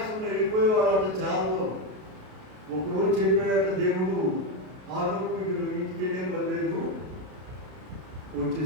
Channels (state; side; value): late; left; 32 ms